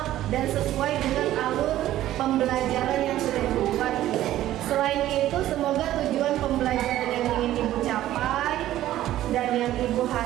dan sesuai dengan alur pembelajaran yang sudah Ibu buat. Selain itu, semoga tujuan pembelajaran yang ingin Ibu capai dan yang Ibu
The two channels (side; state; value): left; quieter; 13.7 dB